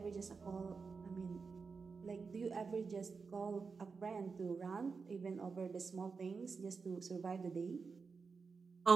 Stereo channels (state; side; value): quieter; left; 5.0 dB